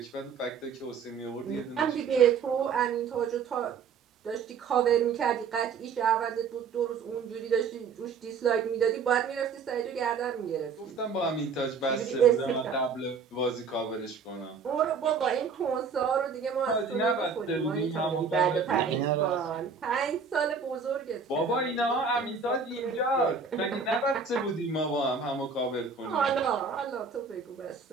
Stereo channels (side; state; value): left; quieter; 5.5 dB